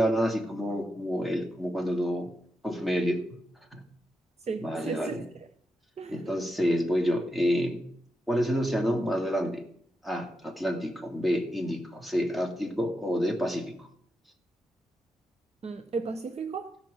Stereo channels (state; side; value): normal; both; correlation 0.87